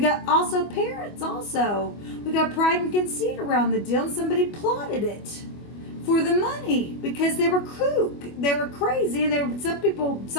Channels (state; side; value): late; right; 25 ms